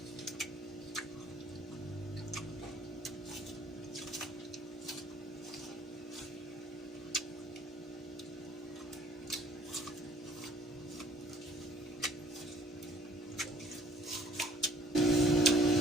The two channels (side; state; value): both; normal; correlation 0.56